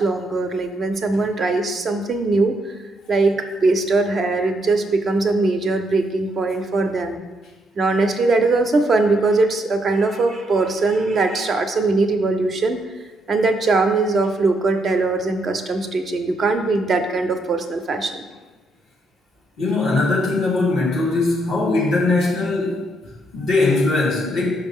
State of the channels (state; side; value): normal; both; correlation 0.76